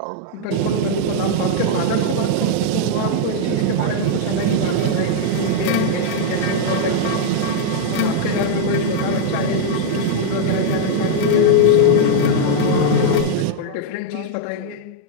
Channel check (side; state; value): both; different; correlation -0.01